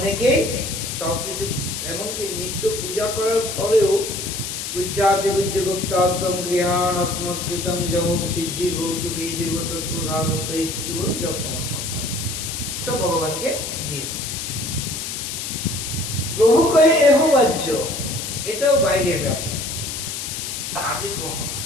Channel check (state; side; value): noise; left; hiss, 5 dB below the sound